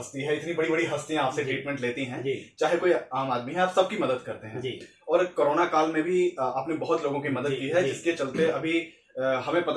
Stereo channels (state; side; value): identical; both; correlation 1.00